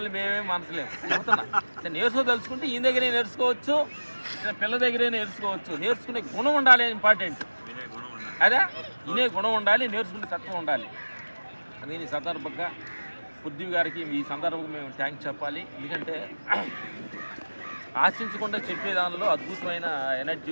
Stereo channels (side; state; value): both; inverted; correlation -1.00